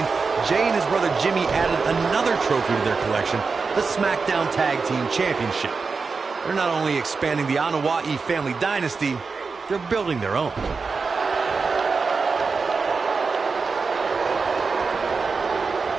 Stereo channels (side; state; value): left; quieter; 4.7 dB